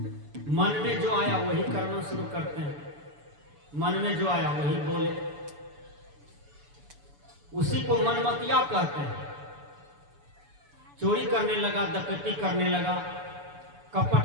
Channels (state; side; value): late; left; 6.9 ms